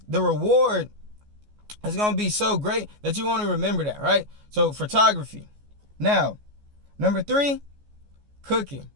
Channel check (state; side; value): late; left; 14 ms